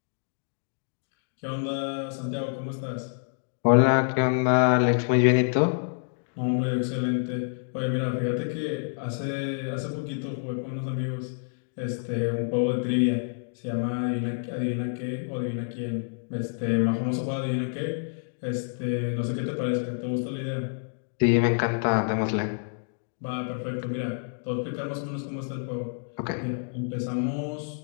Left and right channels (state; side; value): silent; right; digital silence